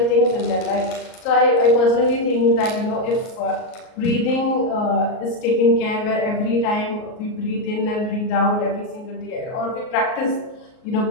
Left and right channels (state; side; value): late; right; 38 ms